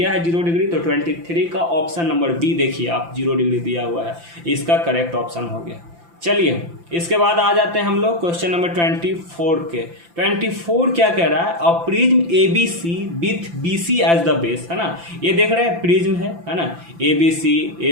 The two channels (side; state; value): left; late; 5.9 ms